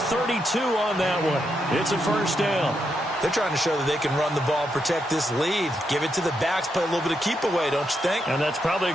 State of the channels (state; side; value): normal; both; correlation 0.81